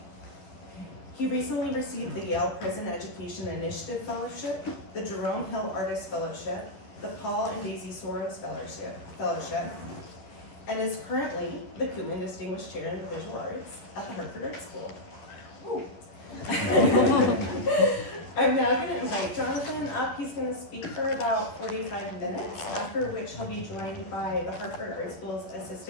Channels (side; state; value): right; late; 11 ms